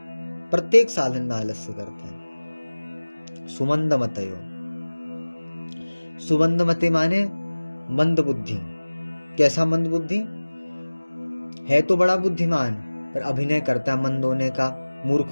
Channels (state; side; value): inverted; both; correlation -1.00